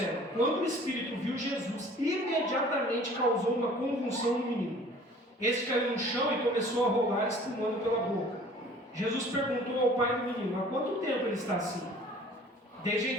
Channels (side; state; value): both; normal; correlation 0.49